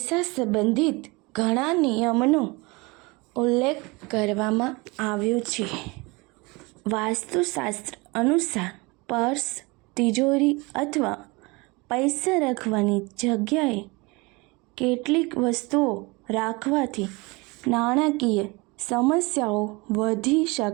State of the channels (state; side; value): quieter; left; 25.6 dB